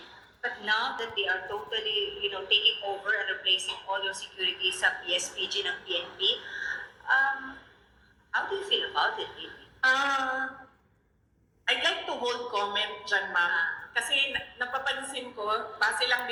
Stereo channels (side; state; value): both; identical; correlation 1.00